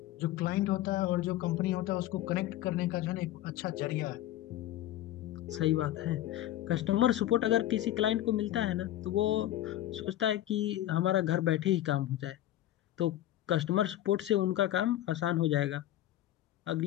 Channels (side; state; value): right; quieter; 13.6 dB